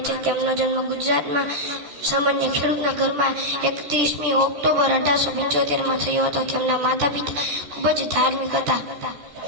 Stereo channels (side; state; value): left; late; 14 ms